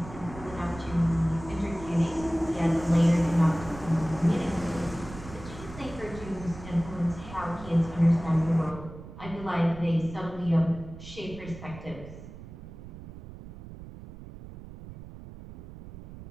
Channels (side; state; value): right; noise; rumble, 14 dB below the sound